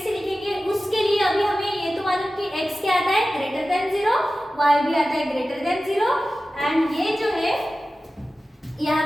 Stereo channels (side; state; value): both; normal; correlation 0.95